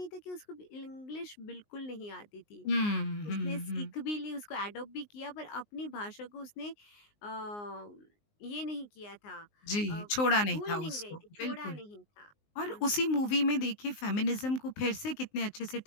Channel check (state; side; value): late; right; 19 ms